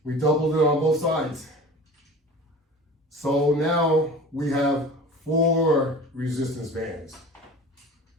We doubled it on both sides. So now we have 4 resistance bands.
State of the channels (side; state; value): both; normal; correlation 0.38